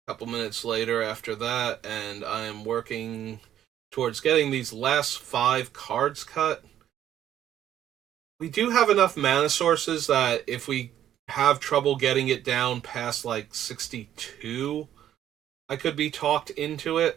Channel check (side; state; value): left; quieter; 11.1 dB